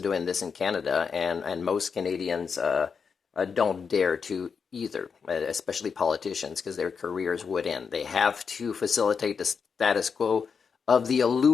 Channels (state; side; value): quieter; right; 5.9 dB